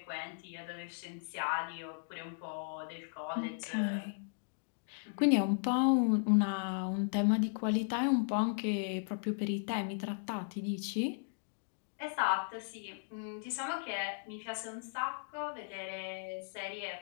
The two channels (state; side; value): silent; right; digital silence